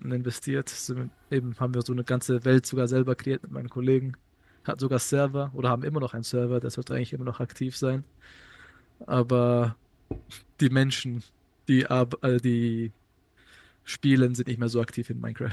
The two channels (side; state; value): both; identical; correlation 1.00